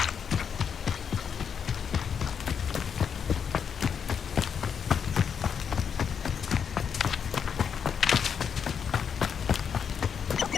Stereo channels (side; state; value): right; quieter; 7.1 dB